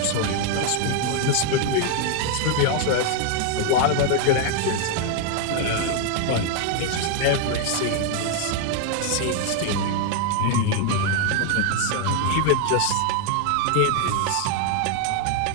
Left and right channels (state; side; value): different; both; correlation 0.00